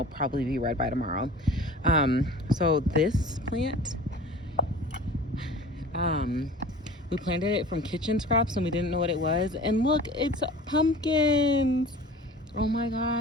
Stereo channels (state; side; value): normal; both; correlation 0.41